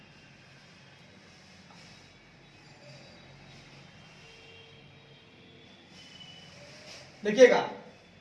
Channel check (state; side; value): identical; both; correlation 1.00